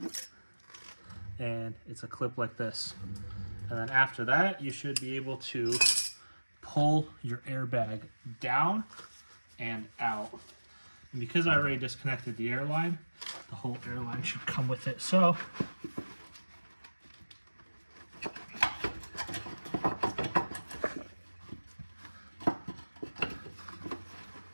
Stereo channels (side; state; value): both; inverted; correlation -1.00